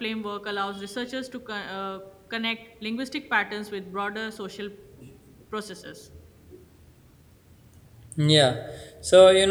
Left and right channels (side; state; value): both; identical; correlation 1.00